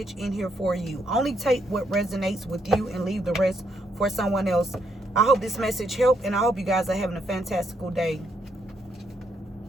in here for you. Only take what resonates with you and leave the rest for someone else. I hope this message helped, and I hope you guys are having a fantastical day.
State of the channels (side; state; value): both; normal; correlation 0.75